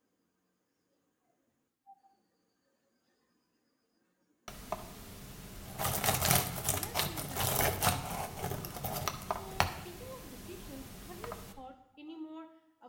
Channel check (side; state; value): both; identical; correlation 1.00